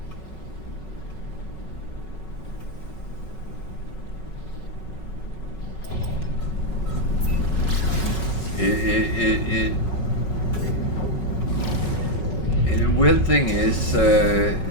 weird thing is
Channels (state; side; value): late; right; 5.4 ms